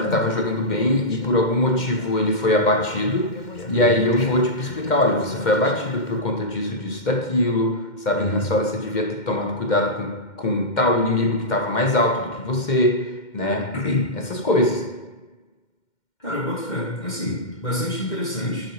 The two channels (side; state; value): right; late; 2.1 ms